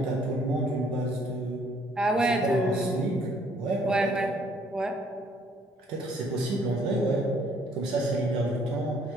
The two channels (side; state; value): both; normal; correlation 0.63